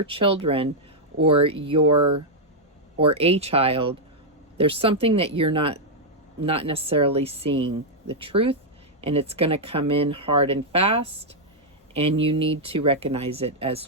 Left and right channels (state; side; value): normal; both; correlation -0.04